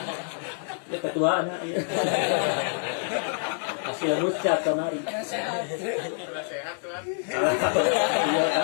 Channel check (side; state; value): right; silent; 60 dB below the other